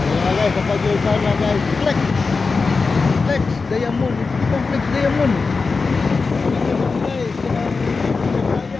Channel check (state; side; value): quieter; right; 4.4 dB